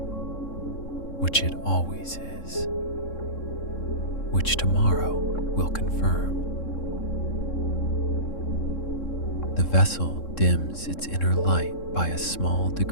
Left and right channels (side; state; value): right; late; 3.7 ms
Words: which it always is, which tomorrow will confirm. The vessel dims its inner light by a small